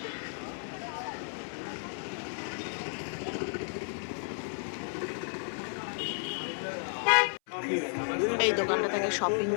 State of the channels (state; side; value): silent; right; 56 dB below the other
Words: এই দোকানটা থেকে শপিং